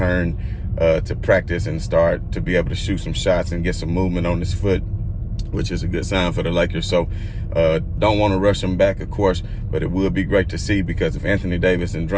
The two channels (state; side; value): identical; both; correlation 1.00